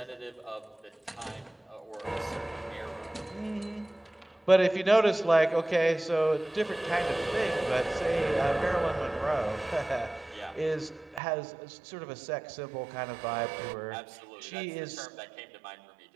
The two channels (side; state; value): left; drops out; at 11.2 s